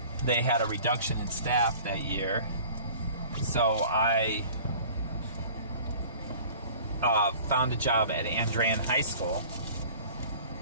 they had a reduction in staff that year, so I found a job at Andrean High School.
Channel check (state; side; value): inverted; both; correlation -0.46